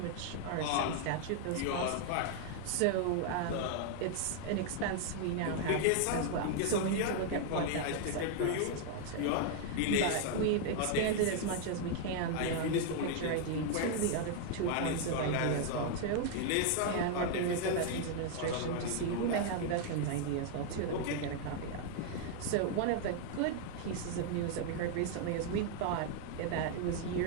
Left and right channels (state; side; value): different; both; correlation 0.00